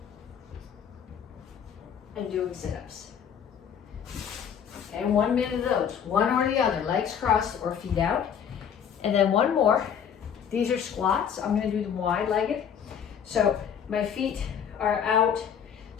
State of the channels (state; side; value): quieter; right; 8.1 dB